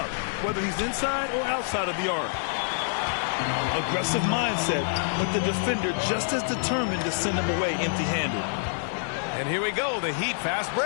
whether he's inside or outside of the arc. Aggressive mindset, but the defender just as determined to send him away empty-handed. And here we go, the Heat fast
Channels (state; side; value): silent; right; digital silence